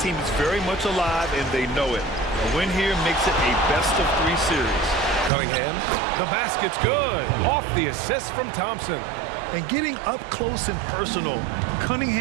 team is very much alive, and they know it. A win here makes it a best-of-3 series. Cunningham, the basket's good. Off the assist from Thompson. And getting up close and personal,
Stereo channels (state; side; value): drops out; left; at 5.3 s